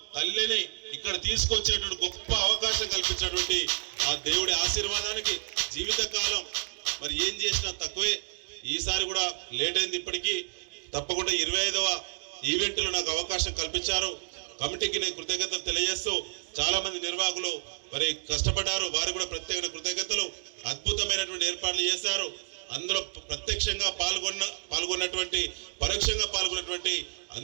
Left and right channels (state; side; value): silent; left; digital silence